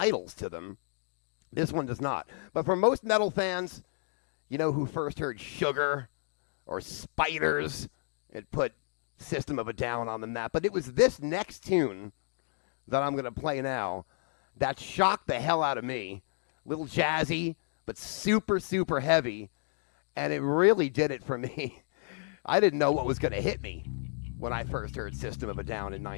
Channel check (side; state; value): right; silent; digital silence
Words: to them. This one does not. But for most metal fans, you know, who first heard Sugar or Spiders, it put System of a Down on the map. But it was this next tune that I'm going to play now that shocked the hell out of me. A little jazzy, but super, super heavy. And it really did it for me. I didn't know what was going to hit me when I first heard System of a Down in